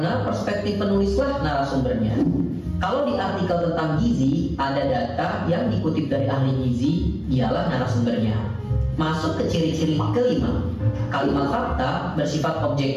perspektif penulislah narasumbernya. Kalau di artikel tentang gizi, ada data yang dikutip dari ahli gizi, dialah narasumbernya. Masuk ke ciri-ciri kelima. Kalimat fakta bersifat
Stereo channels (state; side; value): identical; both; correlation 1.00